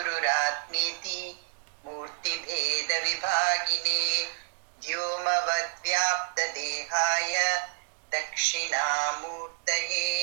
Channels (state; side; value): silent; left; digital silence